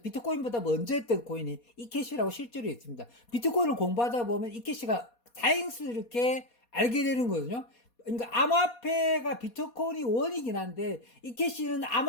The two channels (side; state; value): right; late; 4.2 ms